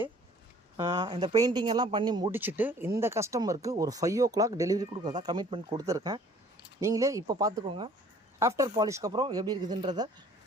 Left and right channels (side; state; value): both; normal; correlation 0.54